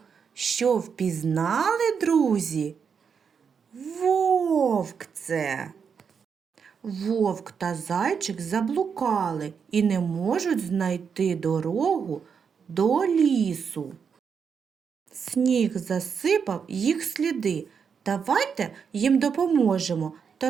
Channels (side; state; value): left; quieter; 6.5 dB